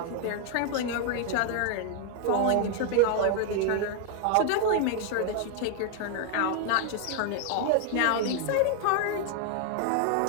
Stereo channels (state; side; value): different; both; correlation 0.00